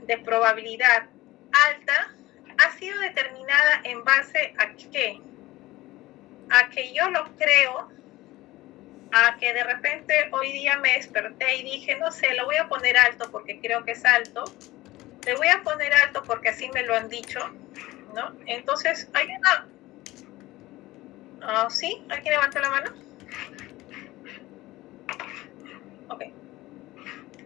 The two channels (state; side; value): quieter; right; 18.1 dB